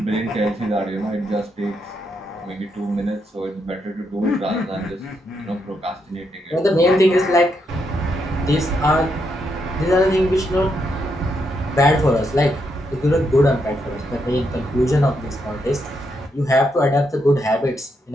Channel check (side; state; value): both; normal; correlation 0.79